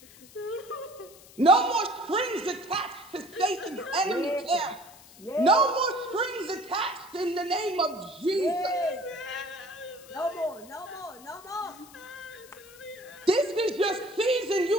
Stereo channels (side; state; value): left; noise; hiss, 22 dB below the sound